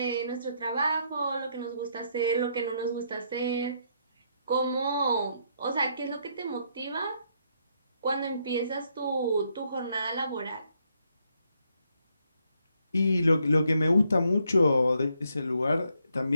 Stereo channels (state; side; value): inverted; both; correlation -0.75